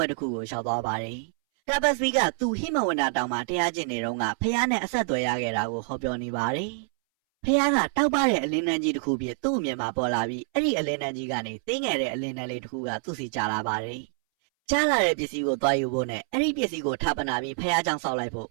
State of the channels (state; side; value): silent; left; 60 dB below the other